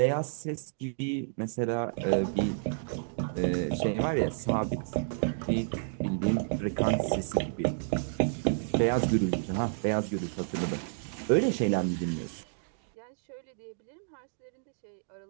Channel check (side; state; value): left; silent; digital silence